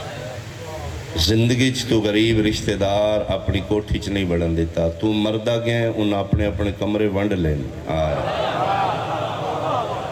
زندگی چ تو غریب رشتہ دار اپنی کوٹھی چ نہیں بڑھن دیتا، تو مردہ گئے انہاں اپنے اپنے کمرے ونڈ لین آئے۔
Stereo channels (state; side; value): identical; both; correlation 1.00